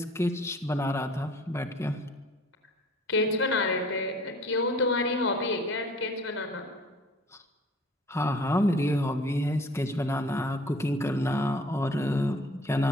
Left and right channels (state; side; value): normal; both; correlation 0.51